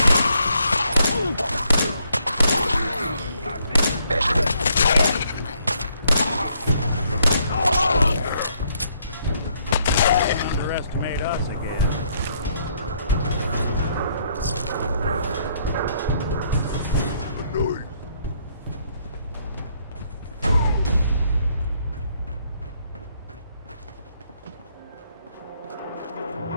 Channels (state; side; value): inverted; both; correlation -0.70